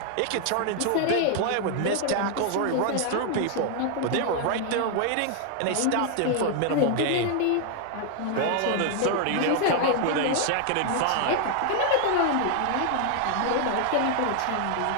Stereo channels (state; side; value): different; both; correlation 0.00